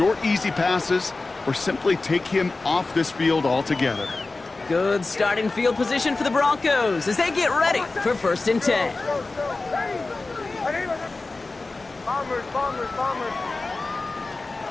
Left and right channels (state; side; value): quieter; right; 3.5 dB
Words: easy passes or simply take him off this field altogether. Good starting field position for the Broncos as they get ready for first and 10.